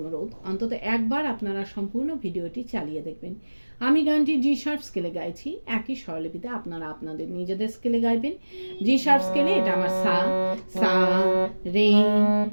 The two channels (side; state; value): both; inverted; correlation -1.00